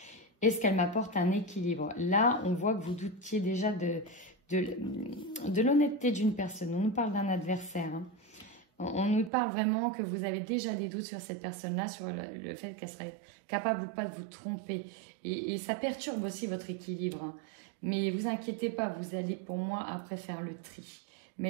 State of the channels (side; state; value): left; drops out; at 9.3 s